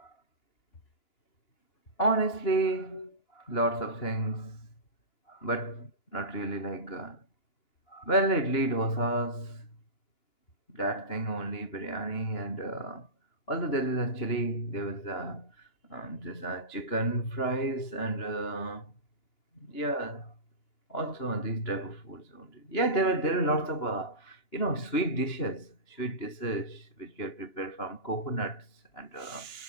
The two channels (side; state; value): right; late; 3.0 ms